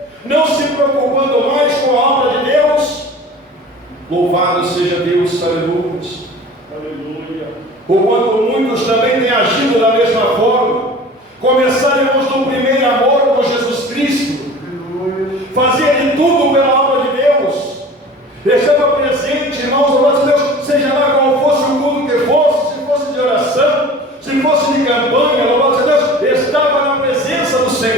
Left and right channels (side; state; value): both; normal; correlation 0.41